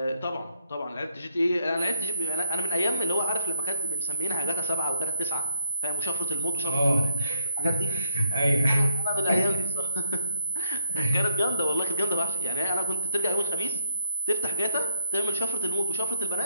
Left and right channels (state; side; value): inverted; both; correlation -0.77